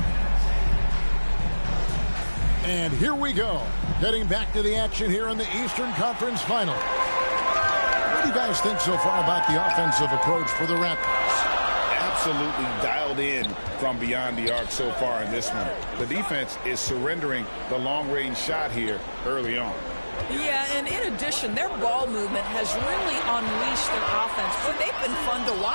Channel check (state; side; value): inverted; both; correlation -1.00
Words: And here we go, getting back to the action here in the Eastern Conference Final. What do you guys think so far about the offensive approach for the Raptors? Absolutely dialed in from beyond the arc so far in this one. The defense is surrendering the long-range shot here early on. Yeah, and in addition, their ball movement has really unleashed their offense. But they've been fun to